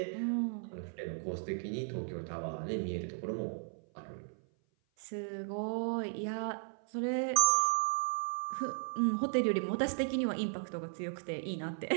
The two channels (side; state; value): left; silent; 54 dB below the other